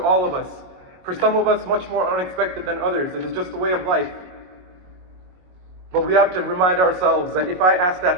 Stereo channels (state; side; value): late; left; 22 ms